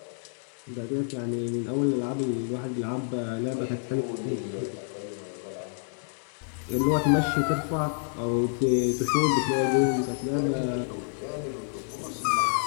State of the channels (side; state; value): right; silent; 59 dB below the other